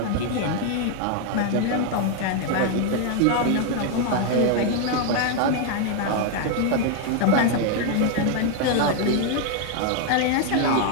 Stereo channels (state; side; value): different; both; correlation 0.01